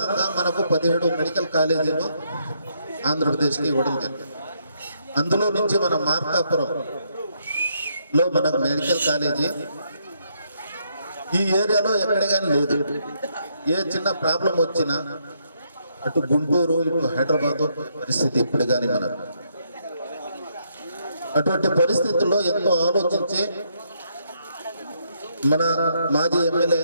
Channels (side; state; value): both; inverted; correlation -0.75